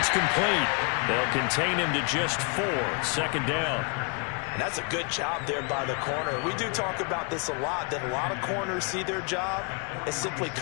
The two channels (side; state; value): right; quieter; 35.1 dB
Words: complete. They'll contain him to just 4. 2nd down. And that's a good job there by the corner. We do talk about this a lot, that a lot of corners see their job as simply